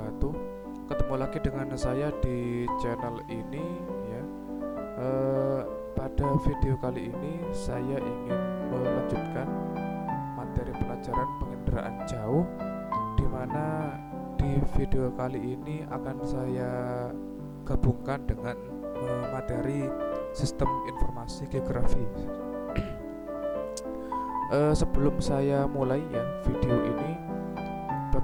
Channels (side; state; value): both; identical; correlation 1.00